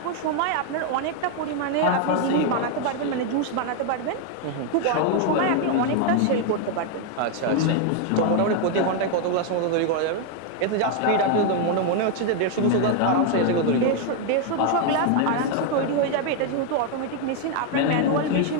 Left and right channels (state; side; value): different; both; correlation 0.01